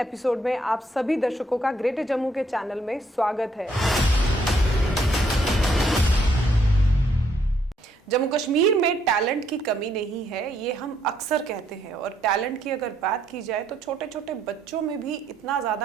एपिसोड में आप सभी दर्शकों का ग्रेटर जम्मू के चैनल में स्वागत है। जम्मू कश्मीर में टैलेंट की कमी नहीं है, ये हम अक्सर कहते हैं। और टैलेंट की अगर बात की जाए तो छोटे छोटे बच्चों में भी इतना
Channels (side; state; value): both; normal; correlation 0.71